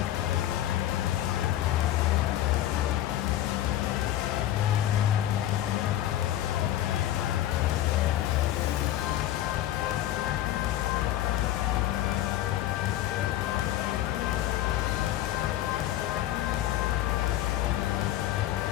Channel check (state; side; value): quieter; right; 13.2 dB